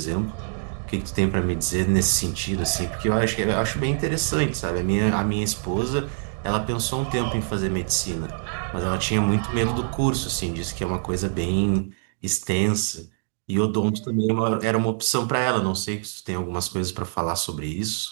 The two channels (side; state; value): left; silent; digital silence